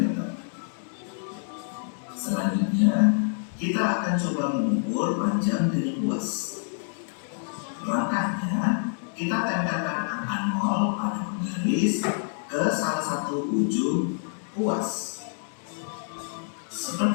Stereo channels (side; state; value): right; silent; digital silence